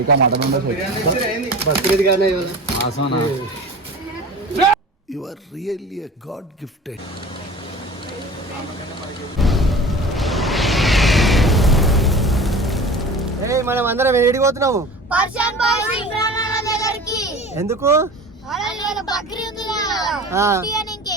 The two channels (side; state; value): both; normal; correlation 0.38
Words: మటన్ బక్రీద్ గానే You are really a God gifted. మనం అందరం ఏడిపోతున్నాము పర్షియన్ బాయ్స్ ఇమ్రాన్ అన్న దగ్గరికి. ఎందుకు?